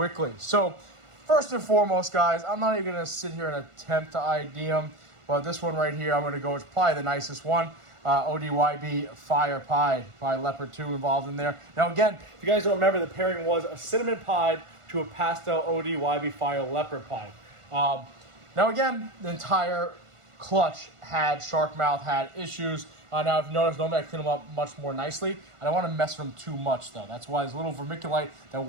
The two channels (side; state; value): left; late; 1.4 ms